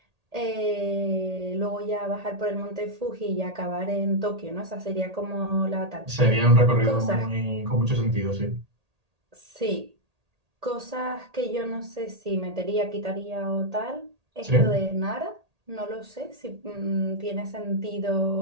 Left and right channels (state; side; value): late; left; 1.8 ms